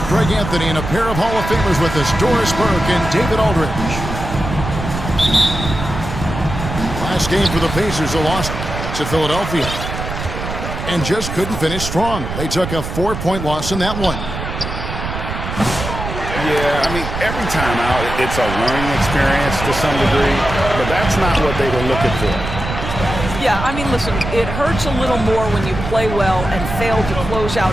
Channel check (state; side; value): noise; right; rumble, 6 dB below the sound